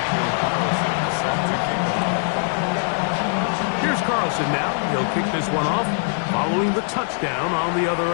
Here's Carlson now. He'll kick this one off following the touchdown on the other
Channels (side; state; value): right; silent; 64 dB below the other